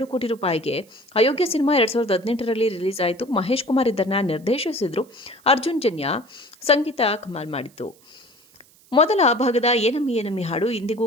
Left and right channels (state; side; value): noise; right; hiss, 29 dB below the sound